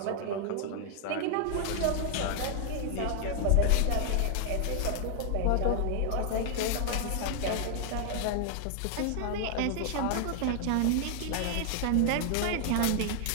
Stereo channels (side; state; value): both; different; correlation 0.00